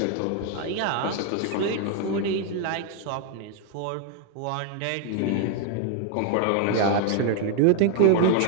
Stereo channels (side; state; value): both; different; correlation 0.00